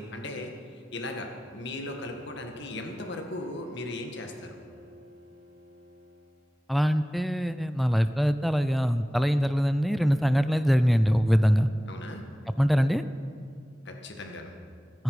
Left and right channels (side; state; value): both; normal; correlation 0.96